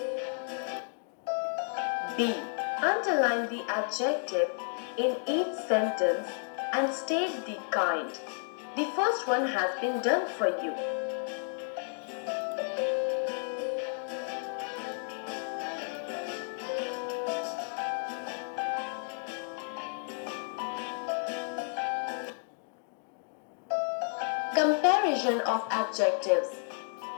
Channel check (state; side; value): silent; right; 56 dB below the other